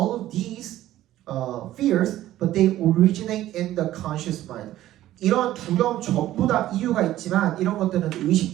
of these fears, but they originate in the conscious mind. 이런 두려움 전부 다 이유가 있지만 이런 것들은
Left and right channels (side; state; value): left; quieter; 14.1 dB